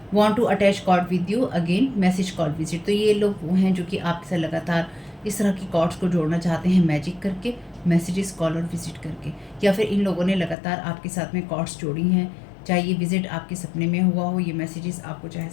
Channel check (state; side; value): drops out; right; at 10.6 s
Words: Want to attach cord with you, again message call visit. तो ये लोग वो हैं जो कि आपके साथ लगातार इस तरह की कॉर्ड्स को जोड़ना चाहते हैं, मैजिक करके, मैसेजेस, कॉल और विजिट करके, या फिर इन लोगों ने लगातार आपके साथ में कॉर्ड्स जोड़ी हैं, चाहे ये विजिट आपके सपने में हुआ हो, ये मैसेजेस आपको चाहे